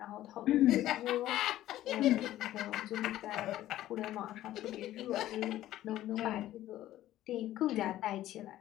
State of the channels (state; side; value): quieter; right; 14.0 dB